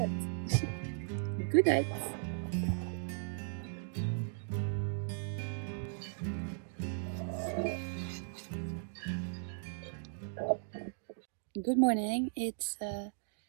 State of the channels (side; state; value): left; silent; digital silence